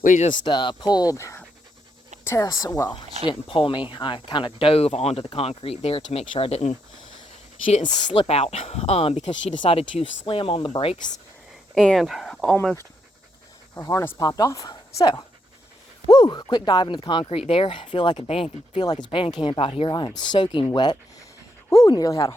just pulled Tess. Well, she didn't pull me. I kind of dove onto the concrete there to make sure she didn't slip out, because she decided to slam on the brakes and almost her harness popped off. So, woo, quick dive into the concrete there. Feel like it's band camp out here. I am soaking wet. Woo, nearly had a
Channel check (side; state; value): both; normal; correlation 0.78